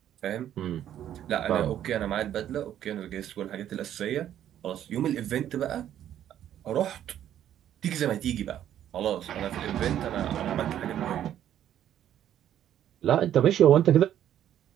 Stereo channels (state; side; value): quieter; left; 11.0 dB